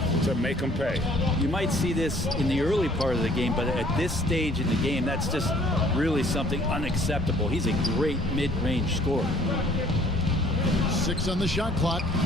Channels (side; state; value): both; normal; correlation 0.57